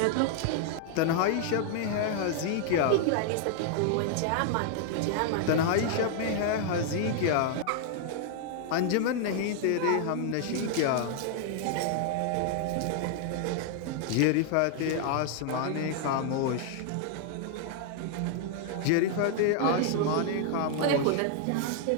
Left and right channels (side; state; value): both; different; correlation -0.01